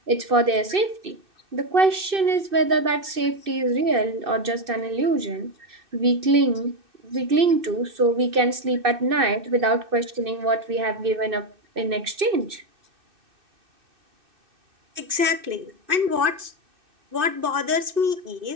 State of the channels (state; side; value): late; left; 2.6 ms